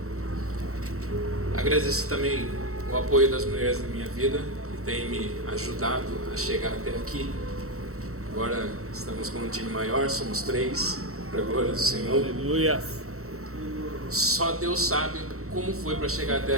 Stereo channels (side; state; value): left; late; 0.64 ms